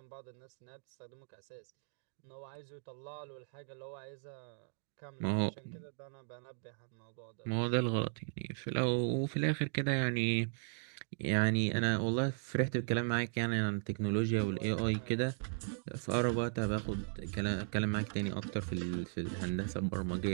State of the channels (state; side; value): silent; left; digital silence